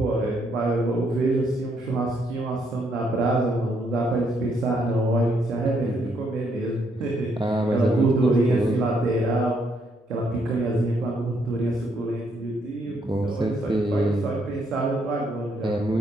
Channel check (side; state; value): both; normal; correlation 0.73